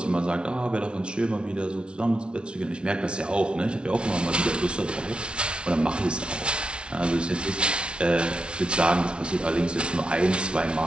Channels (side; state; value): left; late; 0.057 ms